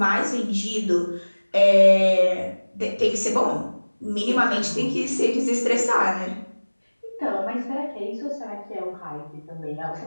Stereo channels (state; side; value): inverted; both; correlation -1.00